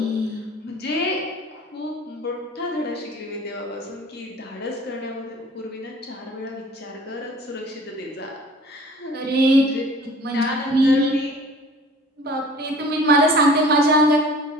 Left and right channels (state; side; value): normal; both; correlation 0.47